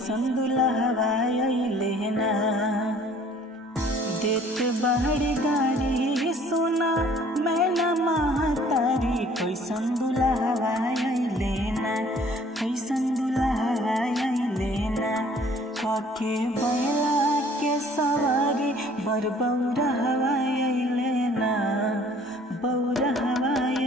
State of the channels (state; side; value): normal; both; correlation 0.55